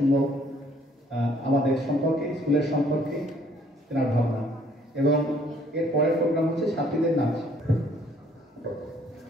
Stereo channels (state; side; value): normal; both; correlation 0.62